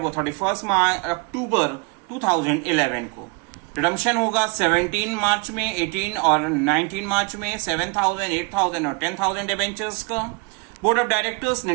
31 अक्टूबर 2011 को। रिडम्पशन होगा 17 मार्च में, 18 और 19 मार्च में 7,000, 8,000 और 10,000 डिबेंचर्स का। बोर्ड ऑफ डायरेक्टर्स ने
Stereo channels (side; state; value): left; quieter; 30.8 dB